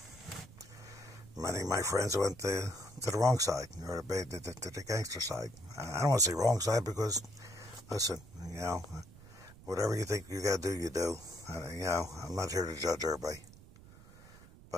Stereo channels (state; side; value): noise; right; rumble, 20 dB below the sound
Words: Many of my friends went to the wrong side, or to the gangster side. I don't want to say wrong side because, listen, whatever you think you got to do, you do. I'm not here to judge everybody.